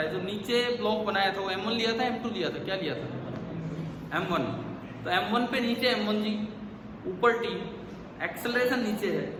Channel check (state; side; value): identical; both; correlation 1.00